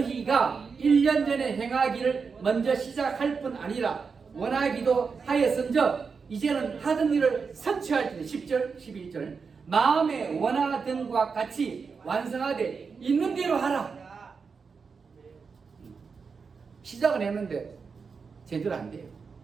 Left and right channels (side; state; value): left; quieter; 5.3 dB